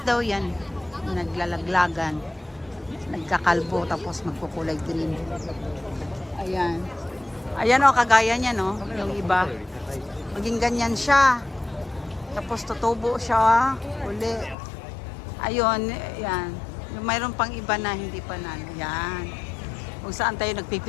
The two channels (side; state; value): right; drops out; at 14.6 s